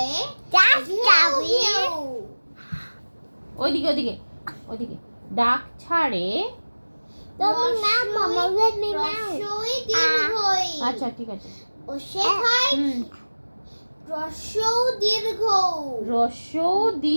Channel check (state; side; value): inverted; both; correlation -1.00